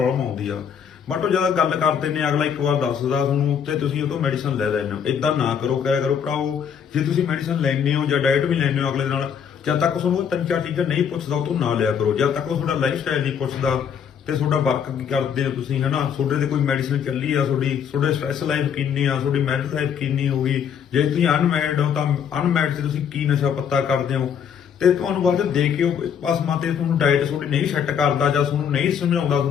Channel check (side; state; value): right; quieter; 7.8 dB